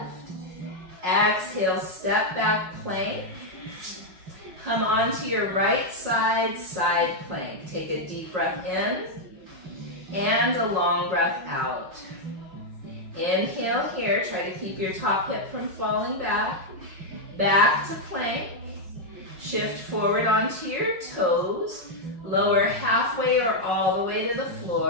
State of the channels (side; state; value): left; late; 5.5 ms